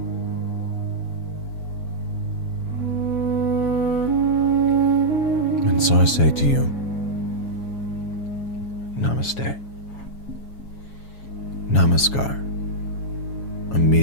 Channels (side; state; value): right; late; 7.3 ms